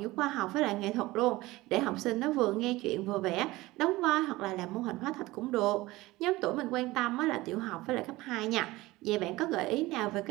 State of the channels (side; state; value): left; quieter; 19.4 dB